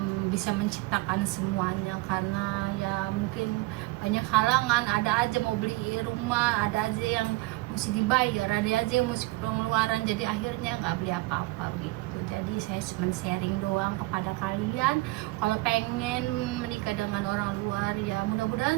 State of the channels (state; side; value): quieter; left; 21.8 dB